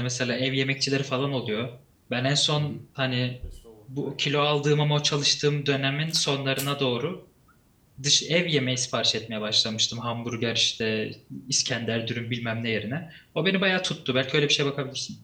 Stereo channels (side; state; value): both; identical; correlation 1.00